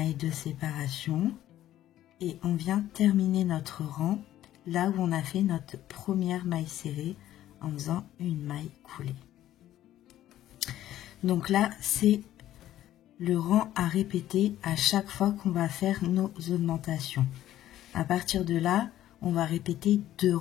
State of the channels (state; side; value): quieter; right; 13.0 dB